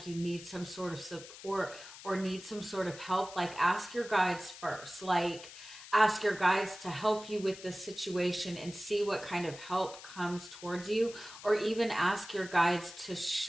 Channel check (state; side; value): noise; left; hiss, 15 dB below the sound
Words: you need some sort of support or need some sort of help, like ask your guides first. Like ask your guides to help you with this situation and see what kind of help comes towards you, or even ask your guides to